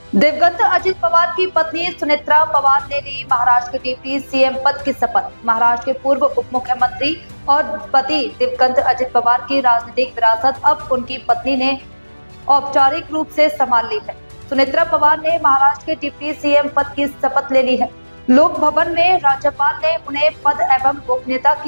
दिवंगत अजित पवार की पत्नी सुनेत्रा पवार ने ली महाराष्ट्र के डिप्टी सीएम पद की शपथ। महाराष्ट्र के पूर्व उप मुख्यमंत्री और पति दिवंगत अजित पवार की राजनीतिक विरासत अब उनकी पत्नी ने औपचारिक रूप से संभाल ली है। सुनेत्रा पवार ने महाराष्ट्र के डिप्टी सीएम पद की शपथ ले ली है। लोक भवन में राज्यपाल ने उन्हें पद एवं गोपनीयता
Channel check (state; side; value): inverted; both; correlation -1.00